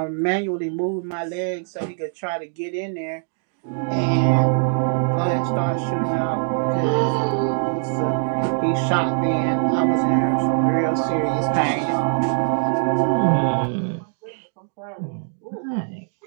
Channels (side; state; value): left; silent; 64 dB below the other